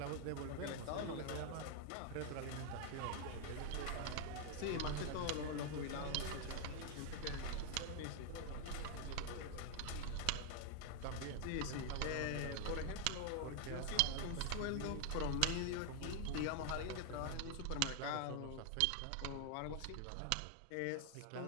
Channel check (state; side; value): different; both; correlation 0.00